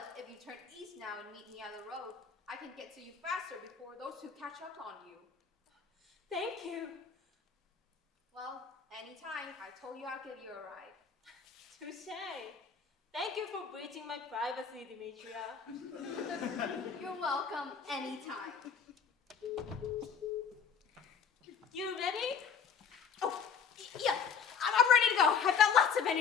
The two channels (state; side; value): quieter; right; 6.4 dB